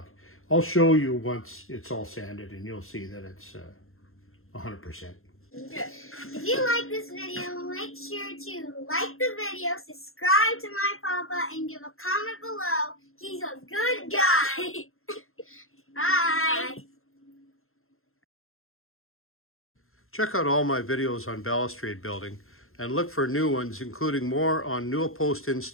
I'll show you once it's all sanded and you'll see that it's 100%. If you like this video, make sure to like the video, subscribe to my papa, and give a comment below. He's a good guy. Bye. Check out all my videos on balustrade building and look for new ones, including more on Newel post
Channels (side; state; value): right; late; 0.61 ms